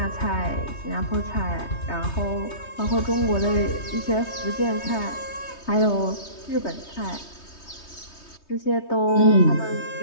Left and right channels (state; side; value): late; right; 3.2 ms